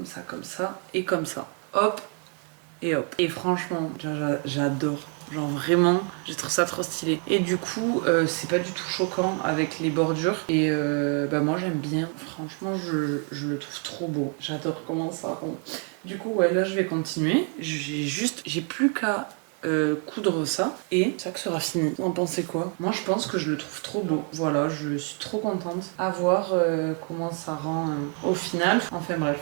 ça, et comme ça. Hop. Et hop. Et franchement, j'adore. Genre vraiment, j'ai trouvé ça trop stylé. Et du coup, c'est pas du tout choquant avec les bordures. Et moi j'aime bien. Franchement, je le trouve trop beau. J'adore comment ça rend. Du coup, ouais, là je vais continuer. J'ai plus qu'à coudre ça et ça que sera fini. Vous en pensez quoi? Moi je pense que je le trouve trop beau. Voilà, je suis trop contente à voir comment ça rend au final. Enfin bref,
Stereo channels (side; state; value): left; quieter; 39.6 dB